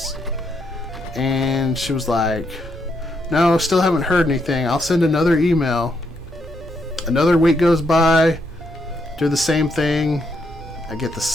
And she was like, no, still haven't heard anything. I'll send another email. Another week goes by. Do the same thing. I get the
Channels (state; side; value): normal; both; correlation 0.77